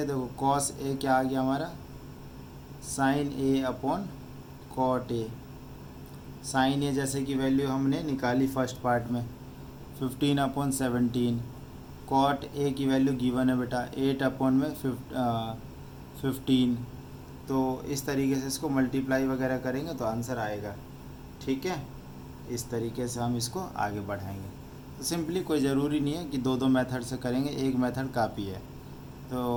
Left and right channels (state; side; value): identical; both; correlation 1.00